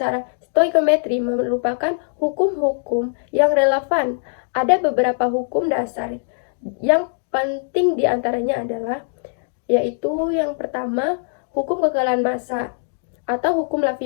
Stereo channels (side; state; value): right; silent; digital silence